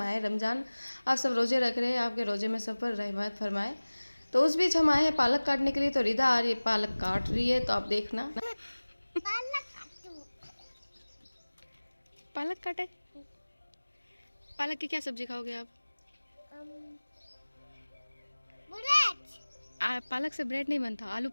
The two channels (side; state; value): both; inverted; correlation -1.00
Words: रमज़ान। आप सब रोज़े रख रहे हैं, आपके रोज़े में सब पर रहमत फरमाए। तो उस बीच हम आए हैं पालक काटने के लिए। तो रिदा आ रही है, पालक काट रही है, तो आप देखना। पालक काटे। पालक की क्या सब्जी खाओगे आप? पालक से ब्रेड नहीं बनता, आलू